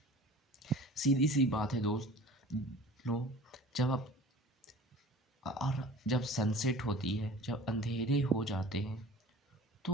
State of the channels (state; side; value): normal; both; correlation 0.42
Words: सीधी सी बात है दोस्त लोग, जब आप और जब सनसेट होती है, जब अंधेरे हो जाते हैं,